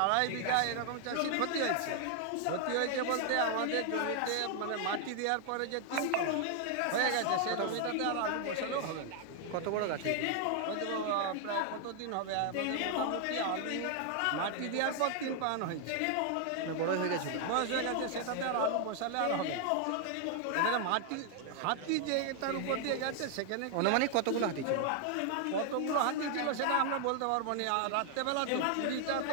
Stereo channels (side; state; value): both; different; correlation 0.00